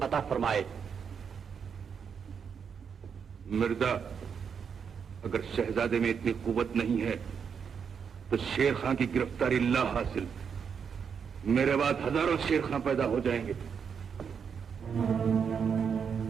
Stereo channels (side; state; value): left; quieter; 6.8 dB